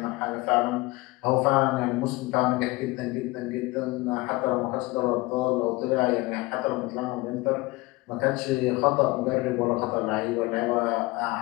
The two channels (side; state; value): right; quieter; 22.1 dB